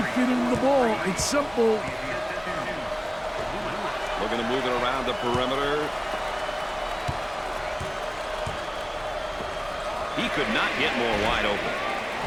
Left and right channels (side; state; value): both; identical; correlation 1.00